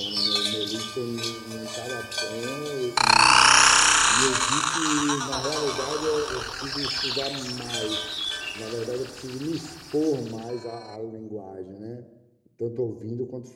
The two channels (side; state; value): both; identical; correlation 1.00